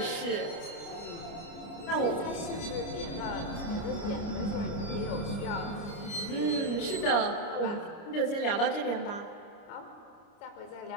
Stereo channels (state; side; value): late; right; 29 ms